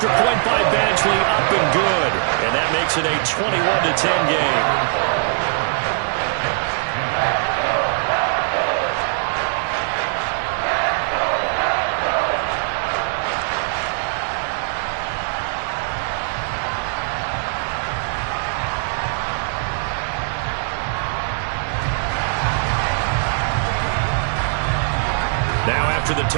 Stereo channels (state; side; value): silent; left; digital silence